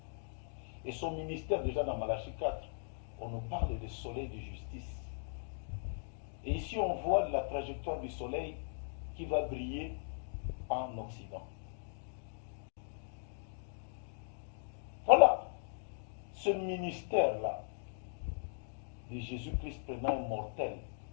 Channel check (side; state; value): right; silent; digital silence